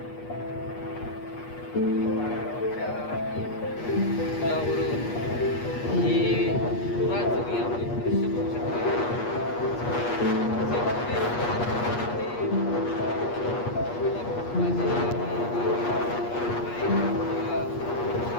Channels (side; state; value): right; late; 8.4 ms